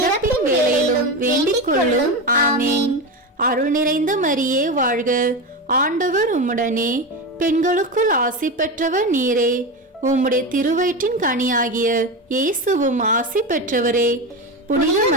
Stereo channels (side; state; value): both; normal; correlation 0.19